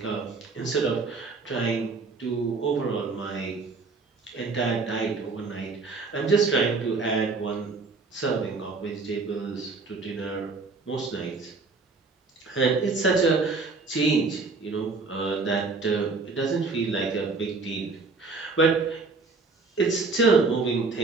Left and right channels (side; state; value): left; quieter; 4.0 dB